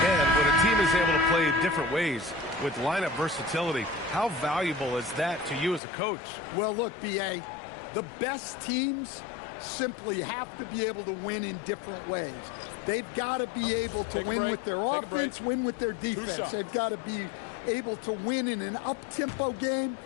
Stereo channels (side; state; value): right; drops out; at 5.8 s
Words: And when a team is able to play different ways with lineup versatility, how valuable is that to you as a coach? Well, look, B.A., the best teams simply have to be able to win in different ways. They've got to be able to win with their offense, win with their defense. They've got to be able to win in an up-tempo game.